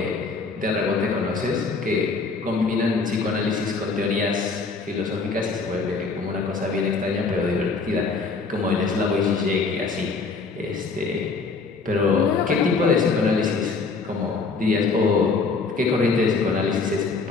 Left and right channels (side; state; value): right; quieter; 4.3 dB